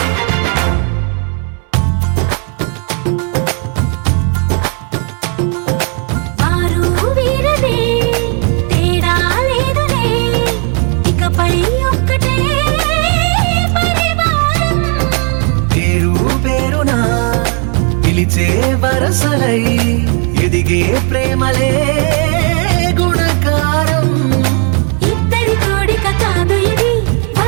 వరసలై ఎదిగే ప్రేమలే గుణకారం ఇద్దరి కోడిక కాదు ఇది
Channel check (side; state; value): left; quieter; 39.1 dB